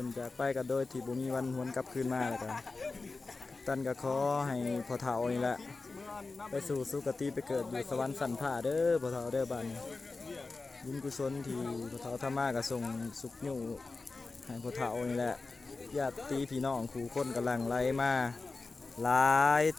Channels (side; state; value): right; quieter; 3.8 dB